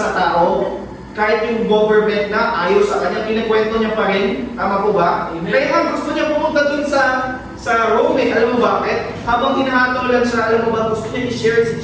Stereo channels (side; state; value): both; identical; correlation 1.00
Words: tao? Kahit yung government na ayaw sa kanya, kinakwento niya pa rin. Tama po ba? Amen. Kaya nga gusto niya pumunta dun sa sa Rome. Alam mo bakit? Habang hinahatulan siya, alam mo ba, gusto niya i-share si